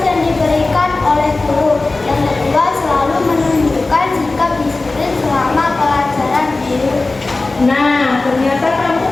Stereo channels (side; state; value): right; quieter; 3.3 dB